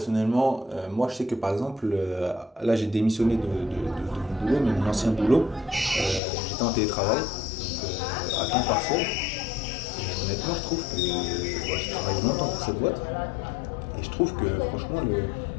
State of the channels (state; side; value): drops out; right; at 6.2 s